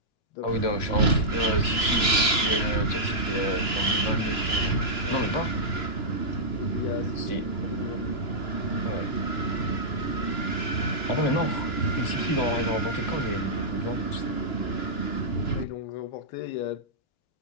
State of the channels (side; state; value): right; late; 2.9 ms